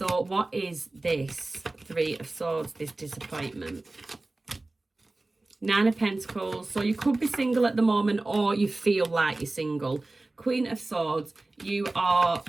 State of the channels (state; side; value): quieter; left; 3.0 dB